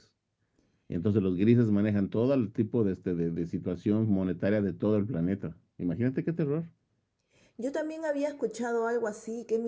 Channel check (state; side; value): identical; both; correlation 1.00